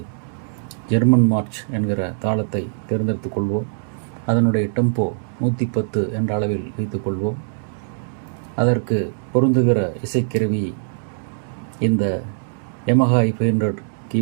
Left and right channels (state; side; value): silent; left; digital silence